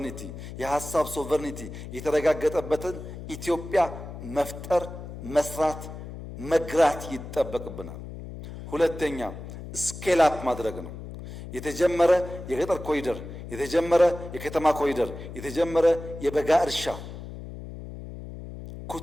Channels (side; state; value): left; noise; hum, 11 dB below the sound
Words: የሐሳብ ሶቨርኒቲ የተረጋገጠበትን ኢትዮጵያ መፍጠር፣ መስራት፣ መግራት ይጠበቅብናል። ሁለተኛ ስኬል አፕ ማድረግ ነው። የተጀመረ የገጠር ኮሪደር፣ የተጀመረ የከተማ ኮሪደር፣ የተጀመረ የበጋ እርሻ፣